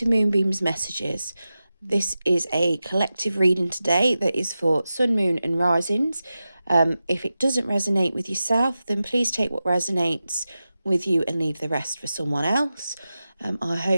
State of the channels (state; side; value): inverted; both; correlation -0.93